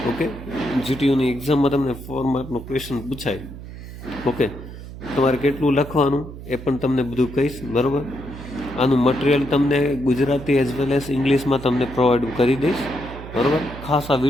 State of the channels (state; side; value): noise; right; hum, 13 dB below the sound